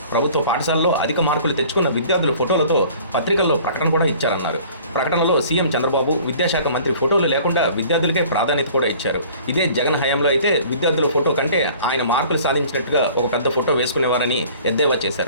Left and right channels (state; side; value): inverted; both; correlation -0.49